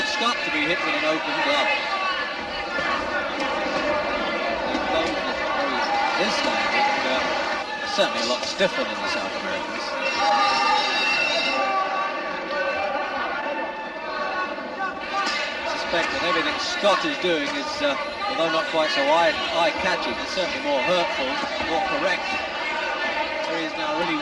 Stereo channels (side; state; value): both; identical; correlation 1.00